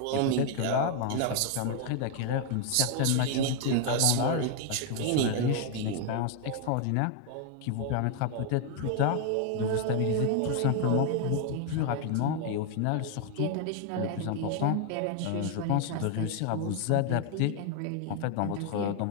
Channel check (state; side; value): different; both; correlation 0.00